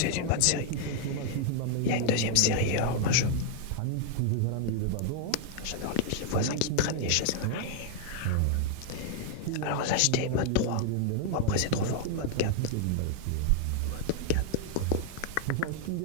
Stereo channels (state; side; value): different; both; correlation 0.00